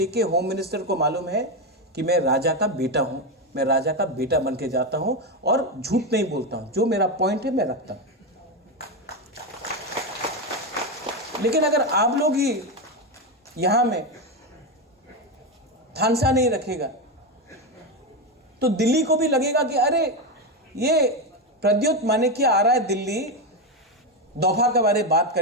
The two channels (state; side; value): normal; both; correlation 0.11